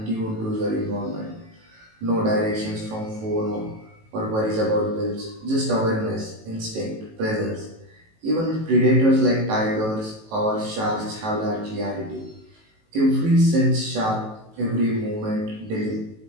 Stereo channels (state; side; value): late; left; 18 ms